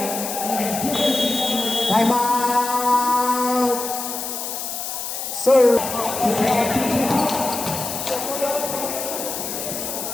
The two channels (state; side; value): noise; left; hiss, 5 dB below the sound